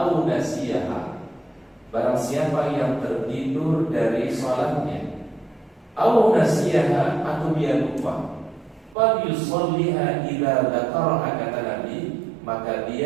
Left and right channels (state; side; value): drops out; left; at 9.0 s